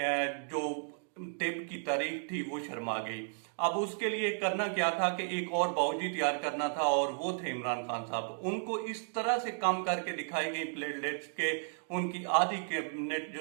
जो टिप की तारीख थी वो शर्मा गई। अब उसके लिए करना क्या था कि एक और बावजी तैयार करना था और वो थे इमरान खान साहब। उनको इस तरह से कम करके दिखाई गई प्लेटलेट्स के उनकी आधी कैबिनेट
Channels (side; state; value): left; silent; digital silence